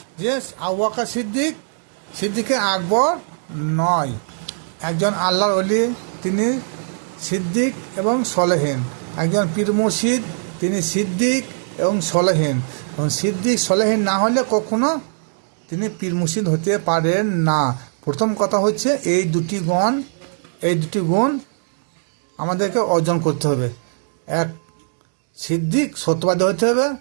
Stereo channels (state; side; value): silent; left; digital silence